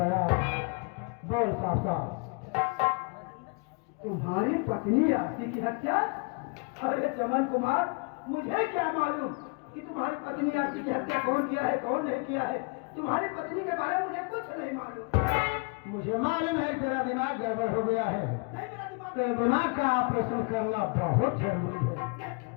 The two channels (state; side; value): quieter; right; 33.5 dB